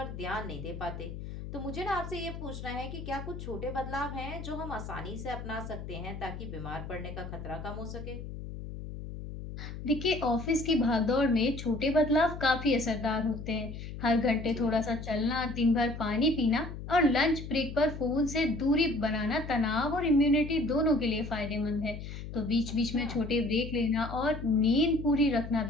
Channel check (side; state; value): left; noise; hum, 9 dB below the sound